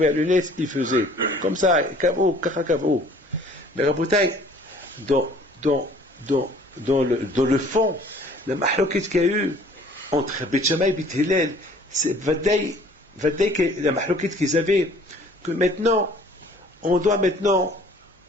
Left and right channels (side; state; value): both; normal; correlation 0.53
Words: le nez, ils faisaient. Comme ça, Kav'ou, Kacha Kav'ou. Mais Rabotai, dans le fond, la mahloquette qu'il y a eu entre Beth Shammai et Beth Hillel, c'est Vadaï que la mahloquette qu'ils avaient, que maintenant, on doit maintenant,